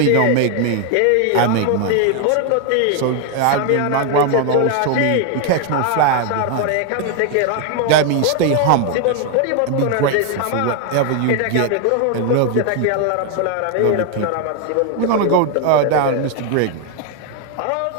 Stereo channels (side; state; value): both; different; correlation 0.01